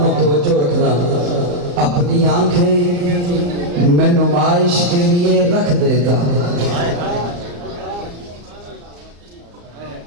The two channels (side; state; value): left; late; 34 ms